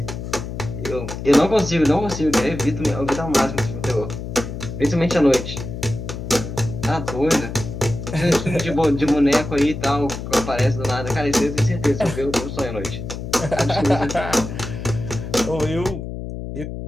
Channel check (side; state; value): left; noise; hum, 7 dB below the sound